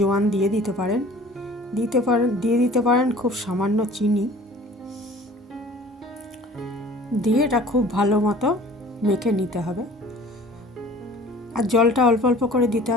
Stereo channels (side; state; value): both; normal; correlation 0.47